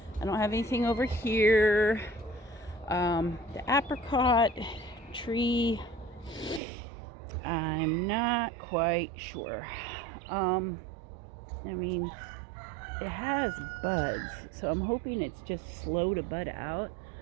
I don't have anything over here. The apricot tree, I'm not quite sure. I mean, it has buds, so I'm hoping it's just slow to bud out.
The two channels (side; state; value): left; drops out; at 6.6 s